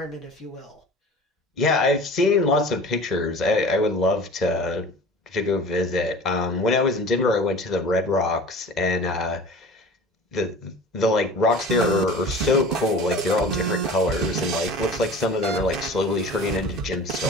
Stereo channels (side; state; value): both; normal; correlation 0.40